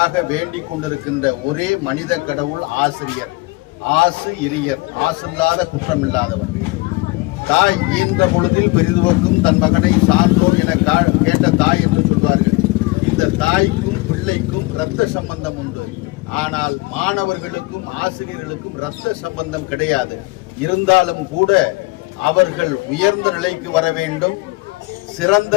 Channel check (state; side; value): quieter; right; 23.1 dB